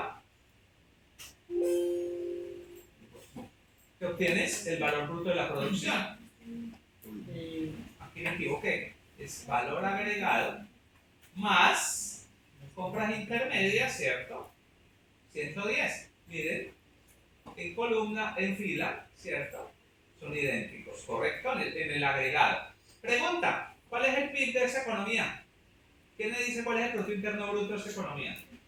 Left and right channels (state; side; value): identical; both; correlation 1.00